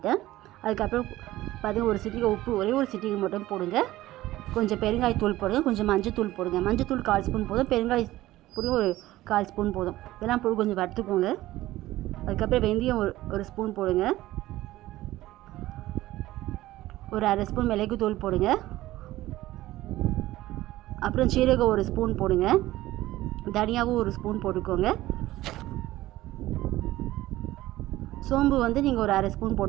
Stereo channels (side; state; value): left; quieter; 16.2 dB